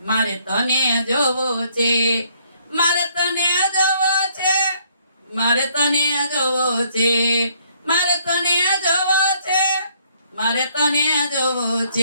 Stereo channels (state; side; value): inverted; both; correlation -0.66